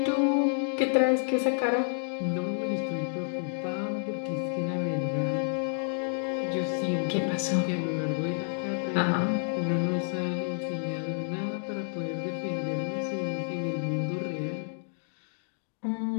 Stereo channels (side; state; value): right; silent; digital silence